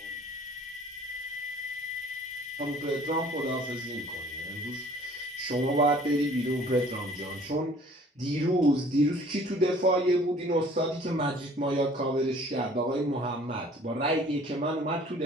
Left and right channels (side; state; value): both; normal; correlation 0.53